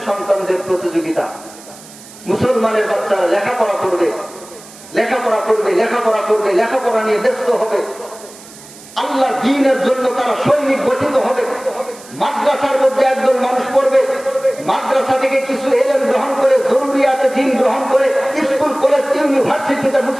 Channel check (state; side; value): noise; right; hiss, 19 dB below the sound